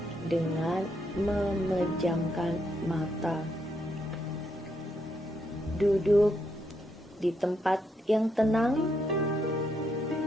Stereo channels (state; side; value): normal; both; correlation 0.78